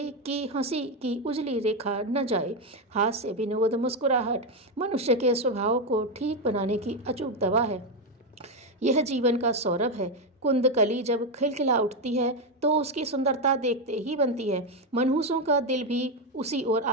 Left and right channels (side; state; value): both; normal; correlation 0.08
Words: की हंसी की उजली रेखा न जाए। हास्य, विनोद, मुस्कुराहट मनुष्य के स्वभाव को ठीक बनाने की अचूक दवा है। यह जीवन का सौरभ है। कुंदकली जब खिलखिला उठती है तो उसकी सुंदरता देखते ही बनती है। मनहूसों का दिल भी उसी ओर